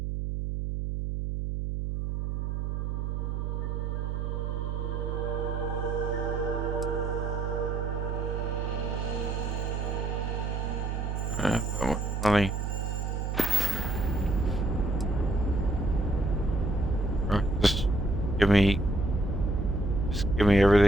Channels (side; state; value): right; noise; hum, 1 dB below the sound